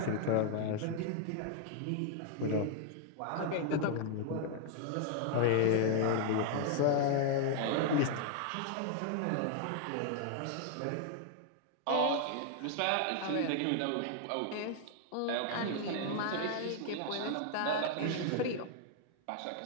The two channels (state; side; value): different; both; correlation 0.00